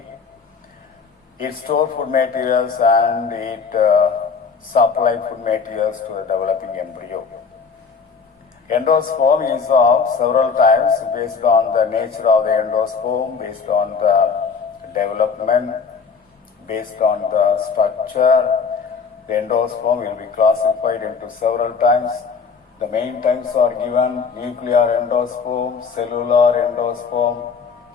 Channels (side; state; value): right; quieter; 5.5 dB